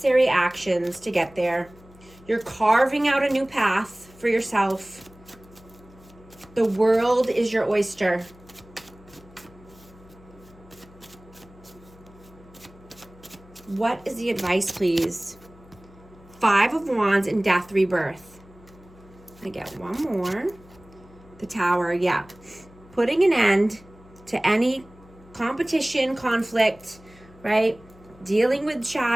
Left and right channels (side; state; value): left; noise; hum, 24 dB below the sound